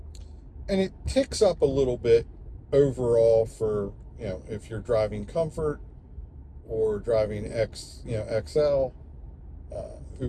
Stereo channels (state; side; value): identical; both; correlation 1.00